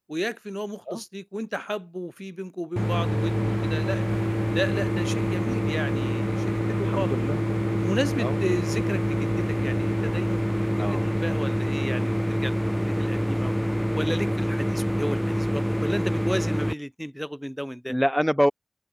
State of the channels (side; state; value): both; identical; correlation 1.00